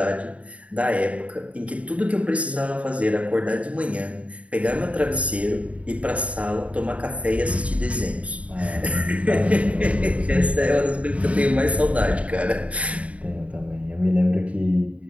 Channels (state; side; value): late; left; 0.066 ms